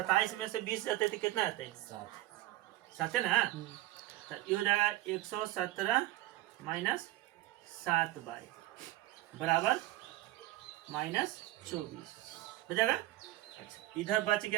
में से 20 जाते थे कितना आते हैं 7 है ना। तो ये हो जाएगा 117 माइनस 7 बाई बराबर माइनस 24 हो जाएगा। अच्छा इधर बच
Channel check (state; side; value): quieter; left; 16.8 dB